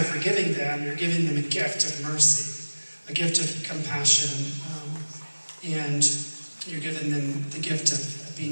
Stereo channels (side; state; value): both; inverted; correlation -1.00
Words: forgiving them, you're giving them a gift of mercy, a gift of compassion, and you're giving them the gift of